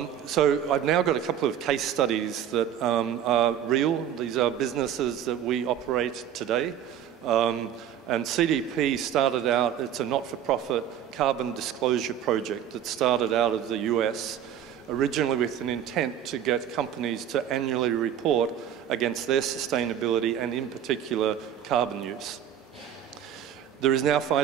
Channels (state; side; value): quieter; left; 9.7 dB